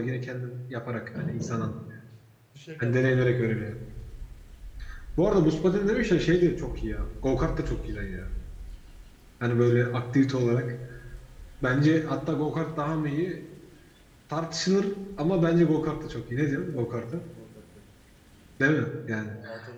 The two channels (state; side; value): identical; both; correlation 1.00